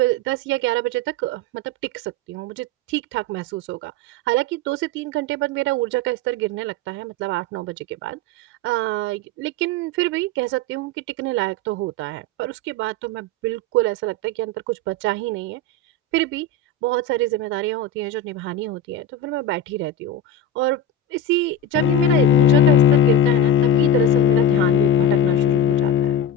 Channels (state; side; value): normal; both; correlation 0.21